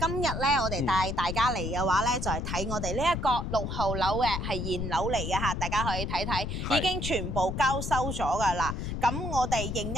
日咧，我哋帶大家嚟嘅話咧，就係睇我哋呢一個6號樓嘅係現樓嚟嘅嚇，大家可以睇睇，已經全部交收咗㗎啦。咁我哋應一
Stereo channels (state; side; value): noise; left; rumble, 3 dB below the sound